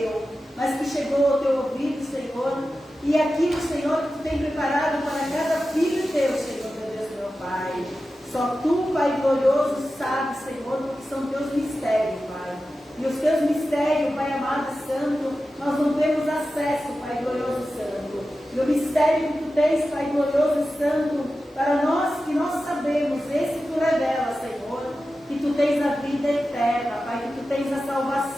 mas que chegou ao teu ouvido, Senhor, e aquilo, Senhor, que tu tem preparado para cada filho teu, Senhor, meu Deus, meu Pai. Só tu, Pai glorioso, sabes, Senhor, o que são teus mistérios, Pai. E os teus mistérios, Pai amado e santo, nós não temos acesso, Pai glorioso e santo. E o mistério que tu tens, Pai glorioso e santo, para nós, que nós sabemos, esse tu revela, Senhor, que tu tens a vida eterna, Pai, que tu tens a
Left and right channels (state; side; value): normal; both; correlation 0.93